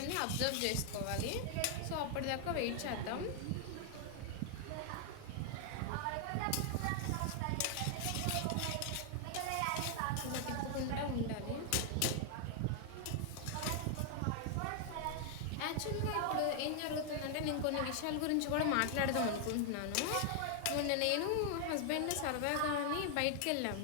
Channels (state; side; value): different; both; correlation 0.00